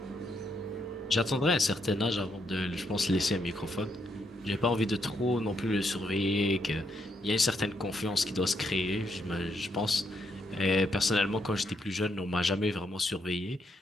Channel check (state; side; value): normal; both; correlation 0.77